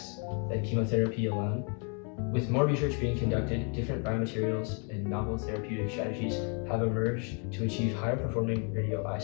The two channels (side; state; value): right; quieter; 38.9 dB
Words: than chemotherapy alone. With more research being conducted, different biomaterials and novel therapeutic strategies have emerged to achieve higher performing